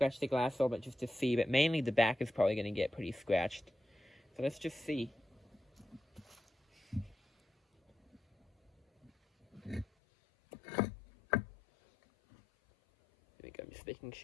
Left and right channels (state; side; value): drops out; right; at 9.9 s